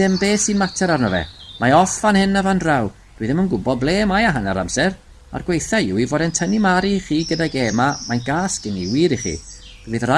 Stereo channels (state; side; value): identical; both; correlation 1.00